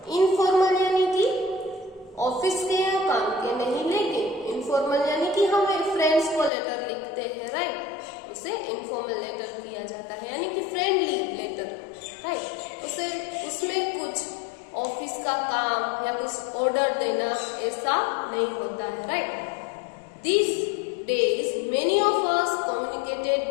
Informal यानी कि ऑफिस के या काम के नहीं, लेकिन इनफॉर्मल यानी कि हम फ्रेंड्स को लेटर लिखते हैं, राइट, उसे इनफॉर्मल लेटर दिया जाता है, यानी कि फ्रेंडली लेटर, राइट. उसे उसमें कुछ ऑफिस का काम या कुछ ऑर्डर देना ऐसा नहीं होता है, right. This days many of us communicated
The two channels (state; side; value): drops out; right; at 6.5 s